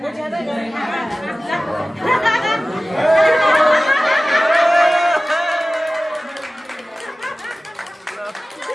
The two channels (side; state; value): both; normal; correlation 0.96